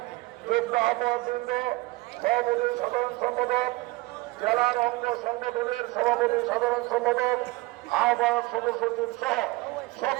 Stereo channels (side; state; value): left; quieter; 21.7 dB